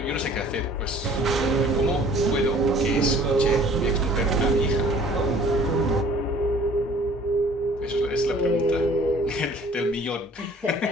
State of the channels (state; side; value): normal; both; correlation 0.52